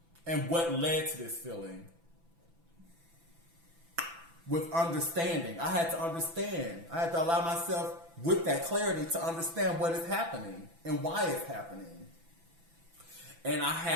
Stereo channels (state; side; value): late; left; 6.0 ms